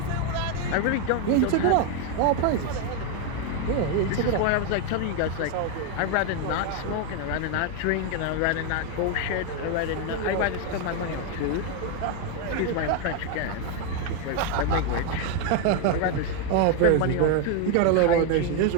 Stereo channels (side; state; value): both; different; correlation 0.01